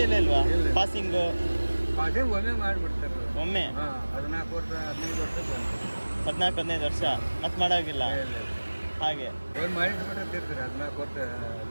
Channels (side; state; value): both; inverted; correlation -1.00